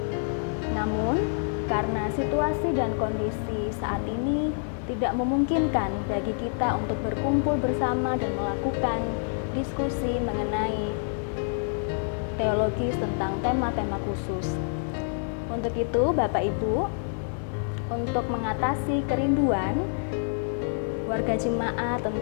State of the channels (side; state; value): right; silent; 60 dB below the other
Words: Namun, karena situasi dan kondisi saat ini tidak memungkinkan bagi kita untuk berkumpul bersama dan melakukan diskusi mengenai teologis tentang tema-tema khusus. Untuk itu, Bapak Ibu, untuk mengatasi kerinduan warga jemaat